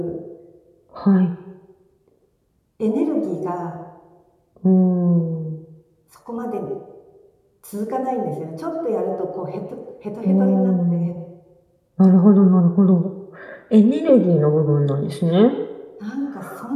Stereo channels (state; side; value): identical; both; correlation 1.00